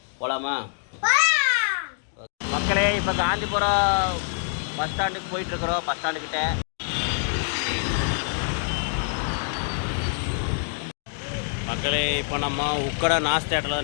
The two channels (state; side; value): silent; right; digital silence